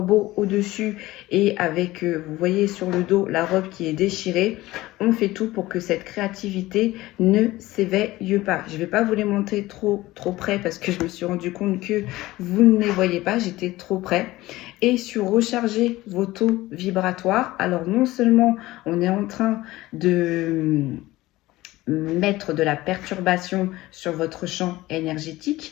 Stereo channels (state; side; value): quieter; right; 17.9 dB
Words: au-dessus et avec, vous voyez sur le dos, la robe qui est déchirée. On fait tout pour que cette créativité ne s'éveille pas. Je ne vais pas vous les montrer trop près parce que je me suis rendu compte que vous ne les voyez pas. J'étais trop près. Et sur recharger vos taux vibratoires, alors non seulement on est en train de mettre de la perturbation sur votre champ